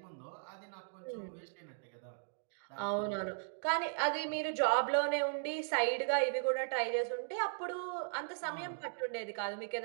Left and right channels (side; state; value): left; silent; digital silence